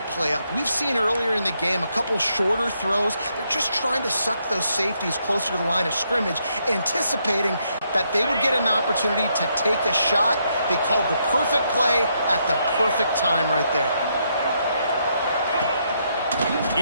play up? We've seen earlier in the game a couple shorter throws. They're just trying to suck those safeties closer to the line of scrimmage, anticipating that they would get an opportunity to take a shot. They called the perfect play at the perfect time right there.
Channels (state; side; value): inverted; both; correlation -0.76